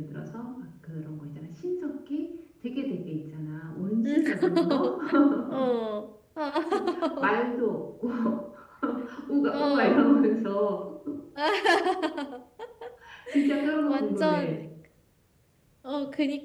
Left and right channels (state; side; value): identical; both; correlation 1.00